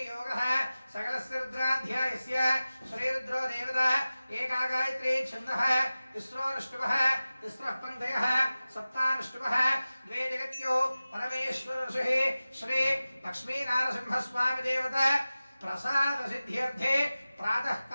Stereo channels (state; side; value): inverted; both; correlation -0.96